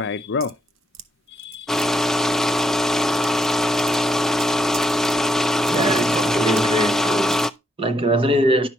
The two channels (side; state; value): both; normal; correlation 0.76